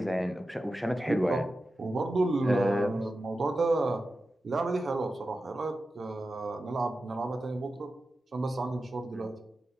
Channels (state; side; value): normal; both; correlation 0.92